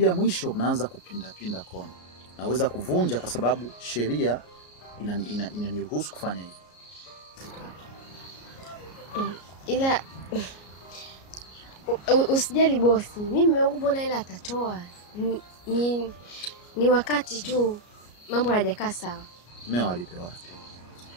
mwisho, mnaanza kupinda kona. Naweza kuvunja kwa sababu sheria inaniruhusu kufanya hivyo. Ila usijali bosi, mimi mume wangu mbona ila atatoa. Ni wakati tu mambo hayajakaa sawa. Mmeo alipe wapi?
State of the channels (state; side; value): late; right; 33 ms